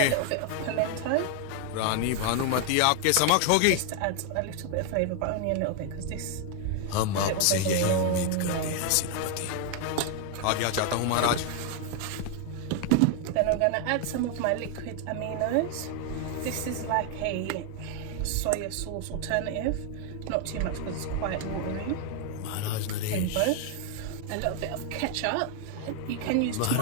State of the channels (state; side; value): different; both; correlation 0.00